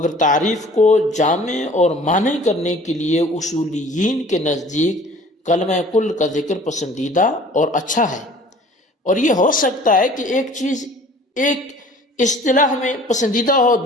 تعریف کو جامع اور معنی کرنے کے لیے اصولیین کے نزدیک کلمہ کل کا ذکر پسندیدہ اور اچھا ہے۔ اور یہ ہو سکتا ہے کہ ایک چیز ایک اصطلاح میں پسندیدہ ہو،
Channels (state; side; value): normal; both; correlation 0.49